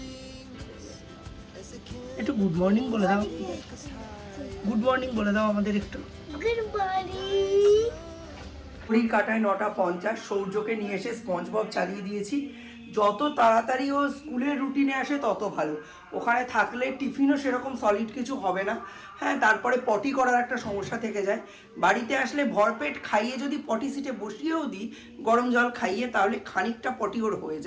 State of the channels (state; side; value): identical; both; correlation 1.00